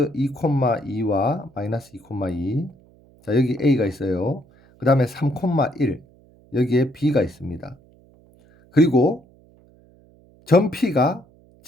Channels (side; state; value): right; noise; hum, 29 dB below the sound